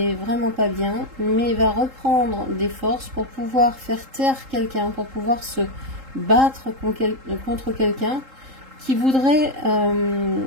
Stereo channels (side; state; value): left; late; 3.8 ms